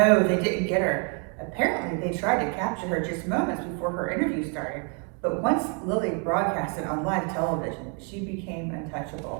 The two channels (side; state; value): left; quieter; 38.0 dB